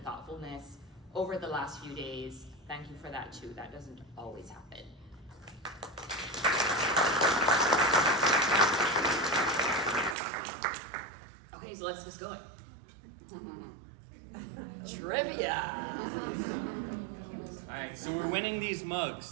over the last few days. Thank you for that too. That doesn't always happen. Okay, so let's just go. Trivia. All right, so we're winning these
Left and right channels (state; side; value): drops out; left; at 10.2 s